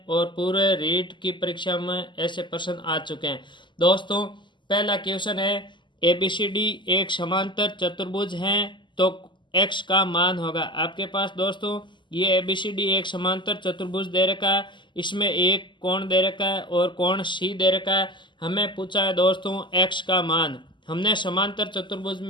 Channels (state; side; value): late; right; 0.23 ms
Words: और पूरे रीट की परीक्षा में ऐसे प्रश्न आ चुके हैं। दोस्तों, पहला क्वेश्चन है, एबीसीडी एक समांतर चतुर्भुज हैं तो एक्स का मान होगा। आपके पास दोस्तों ये एबीसीडी एक समांतर चतुर्भुज दे रखा है, इसमें एक कोण दे रखा है और कोण सी दे रखा है। हमें पूछा है दोस्तों एक्स का मान। हमने समांतर चतुर्भुज